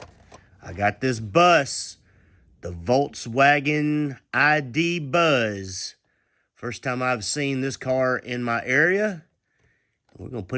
I got this bus, the Volkswagen ID Buzz. First time I've seen this car in my area. We're gonna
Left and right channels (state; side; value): identical; both; correlation 1.00